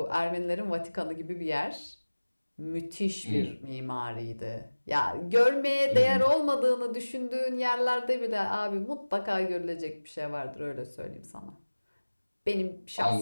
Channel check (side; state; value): both; inverted; correlation -1.00